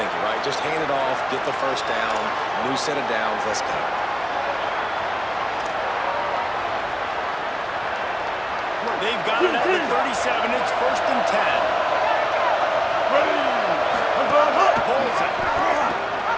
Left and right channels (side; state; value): both; identical; correlation 1.00